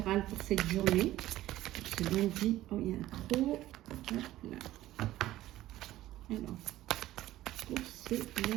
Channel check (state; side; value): quieter; left; 15.0 dB